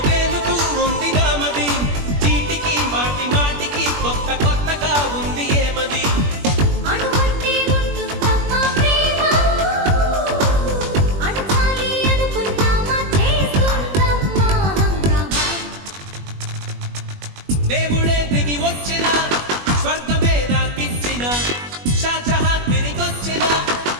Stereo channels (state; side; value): late; left; 21 ms